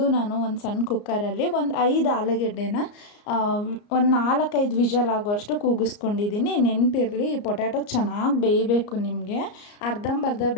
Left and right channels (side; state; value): right; late; 34 ms